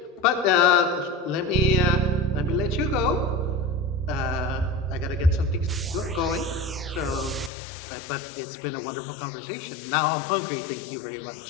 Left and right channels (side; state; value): right; drops out; at 7.5 s